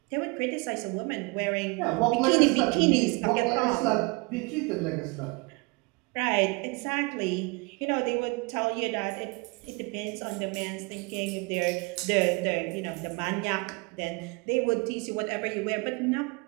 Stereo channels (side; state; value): left; quieter; 28.6 dB